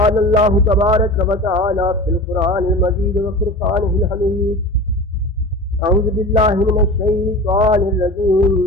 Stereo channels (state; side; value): normal; both; correlation 0.33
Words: الله تبارك وتعالى في القرآن المجيد وفرقانه الحميد: أعوذ بالله من الشيطان الرجيم،